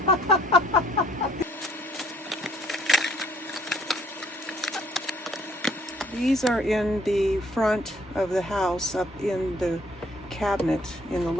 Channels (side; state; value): both; normal; correlation 0.62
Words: These are in the front of the house, up in the cabinet in the